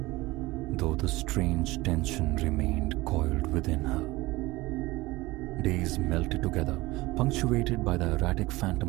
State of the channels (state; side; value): quieter; left; 20.4 dB